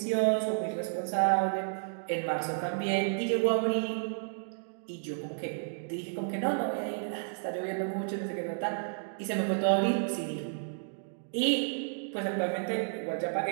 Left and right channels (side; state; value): left; silent; digital silence